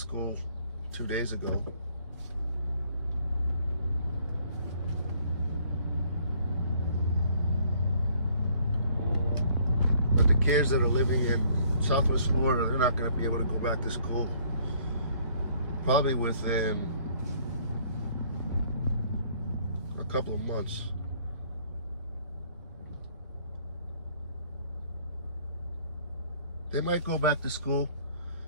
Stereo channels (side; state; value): both; inverted; correlation -0.61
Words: 2 days ago. But the kids that are living in Southwest Florida, they're not going to be able to go back to school probably within a couple of months. They might go back to school